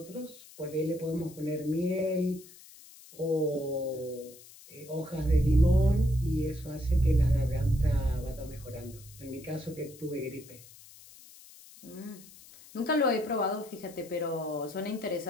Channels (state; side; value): noise; left; hiss, 21 dB below the sound